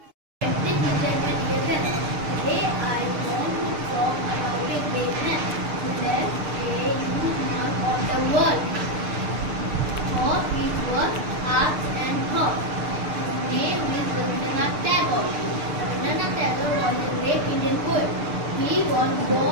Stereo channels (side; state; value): left; late; 6.7 ms